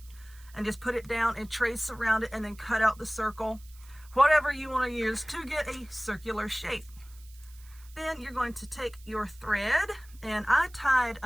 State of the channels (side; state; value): right; noise; hiss, 24 dB below the sound